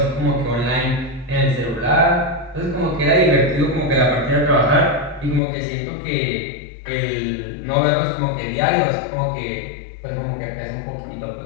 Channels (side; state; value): right; drops out; at 5.4 s